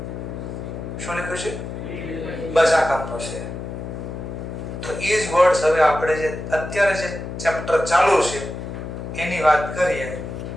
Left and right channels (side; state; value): left; noise; hum, 7 dB below the sound